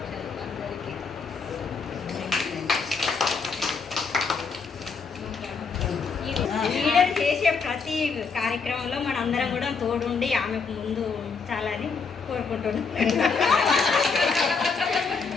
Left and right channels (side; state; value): right; quieter; 5.0 dB